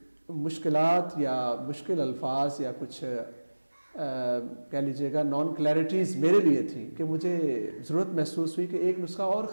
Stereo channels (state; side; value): inverted; both; correlation -1.00